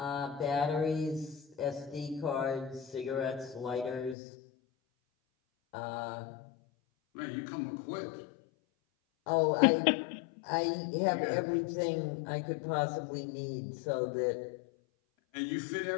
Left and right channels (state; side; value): drops out; right; at 4.2 s